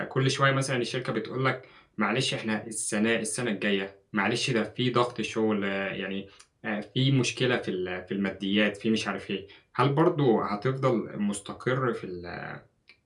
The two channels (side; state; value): both; identical; correlation 1.00